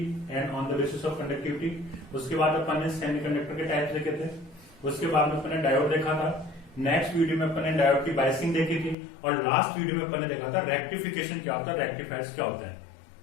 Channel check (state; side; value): drops out; right; at 9.0 s